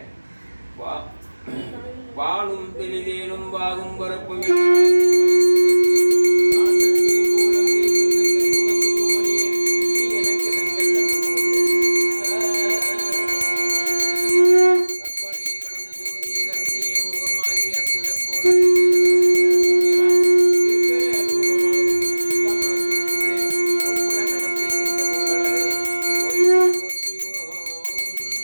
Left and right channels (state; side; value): inverted; both; correlation -1.00